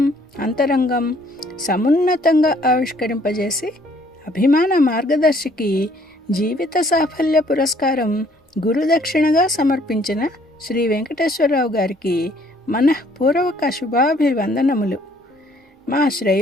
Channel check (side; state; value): both; normal; correlation 0.62